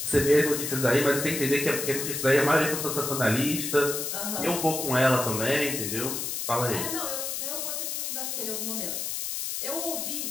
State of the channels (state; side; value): noise; left; hiss, 3 dB below the sound